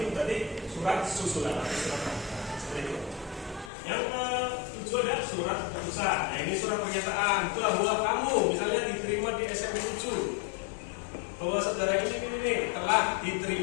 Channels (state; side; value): drops out; right; at 3.7 s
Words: berarti surat susulan. Seperti itu. Yang ke-7 ada surat keputusan. Nah ini surat pernyataan bahwa kamu misalnya diterima di SMP 7, bahwa saudara ini telah